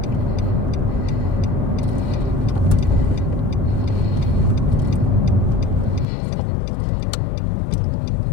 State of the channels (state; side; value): drops out; right; at 6.1 s